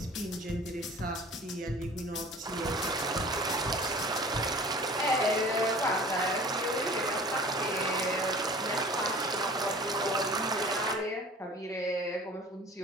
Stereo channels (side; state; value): both; normal; correlation 0.44